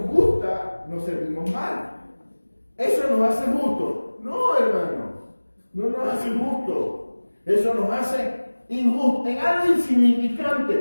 gusta, nos servimos mal. Eso nos hace justo. No, hermano, no nos hace justo. Eso nos hace injusto. En algo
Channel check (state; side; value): inverted; both; correlation -1.00